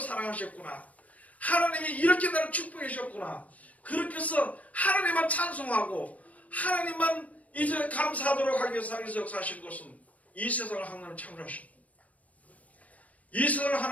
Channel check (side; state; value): right; late; 0.069 ms